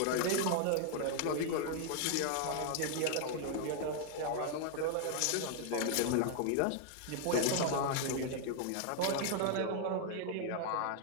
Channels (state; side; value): different; both; correlation 0.00